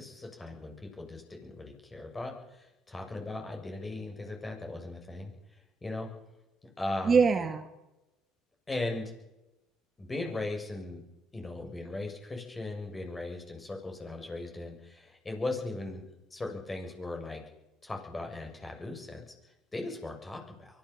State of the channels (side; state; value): both; normal; correlation 0.85